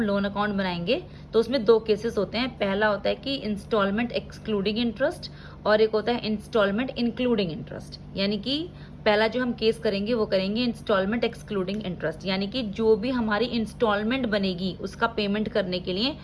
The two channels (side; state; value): both; identical; correlation 1.00